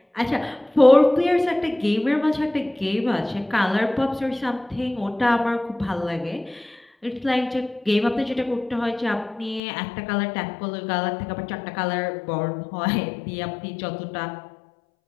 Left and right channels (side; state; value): right; drops out; at 9.6 s